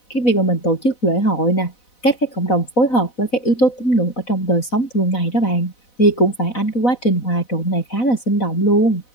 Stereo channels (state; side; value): late; right; 4.0 ms